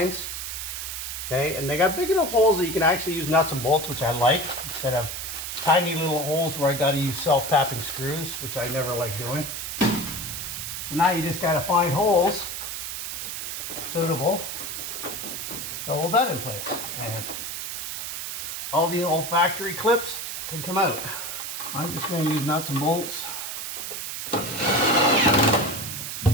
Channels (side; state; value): right; noise; hiss, 5 dB below the sound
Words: Okay, and they got big enough holes that you can actually use nuts and bolts, which I like, instead of tiny little holes where I got to use self-tapping screws, which I never like doing. So now you just got to find holes suitable to hold that in place, and all the old factory clips can come out. I'm just going to use nuts and bolts.